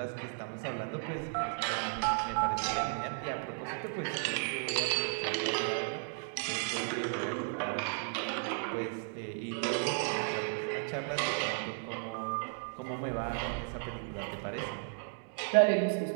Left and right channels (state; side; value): silent; left; 55 dB below the other